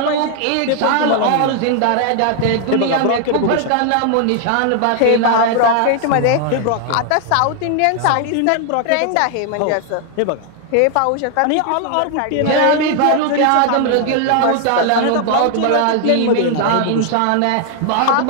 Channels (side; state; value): both; different; correlation 0.00